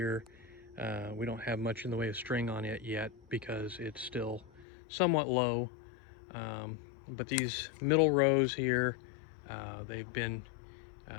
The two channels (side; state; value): right; drops out; at 4.7 s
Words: we don't have much in the way of string on it yet because it's still somewhat low. But these middle rows here, they've been